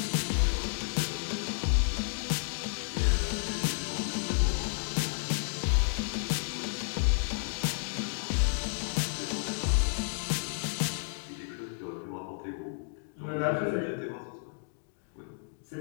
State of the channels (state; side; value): silent; right; digital silence